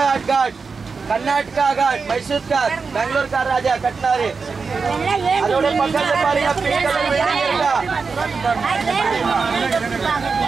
காட், கர்நாடகா காட், மைசூர் காட், பெங்களூர் கார் ராஜா கட்டினாரு. அதோட பக்கத்துல பாருங்க பிங்க் கலர் பில்டிங் இருக்கா.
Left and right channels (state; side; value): quieter; left; 4.9 dB